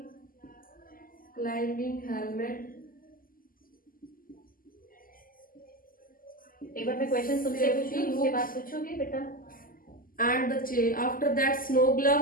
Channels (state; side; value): late; right; 0.41 ms